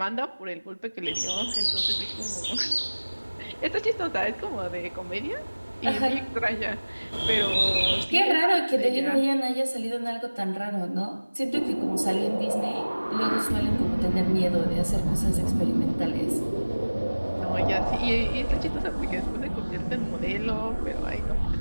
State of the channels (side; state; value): both; inverted; correlation -1.00